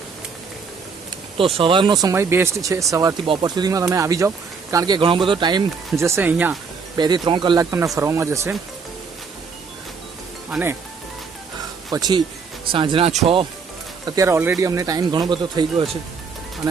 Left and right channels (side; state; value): left; quieter; 5.3 dB